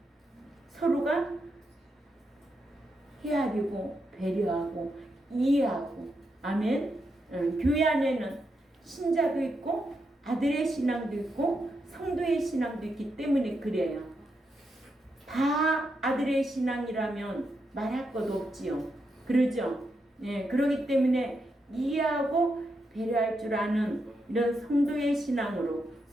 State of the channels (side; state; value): both; normal; correlation 0.83